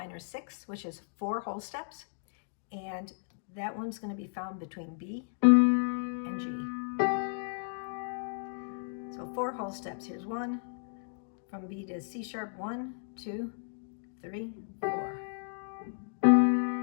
6, which is 4 whole steps, and that one's going to be found between B and G. So 4 whole steps. Here's 1, from B to C sharp, 1, 2, 3, 4.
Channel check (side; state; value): right; silent; digital silence